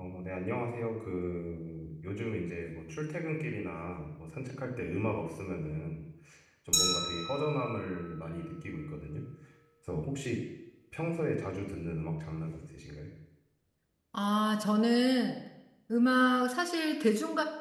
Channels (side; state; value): both; identical; correlation 1.00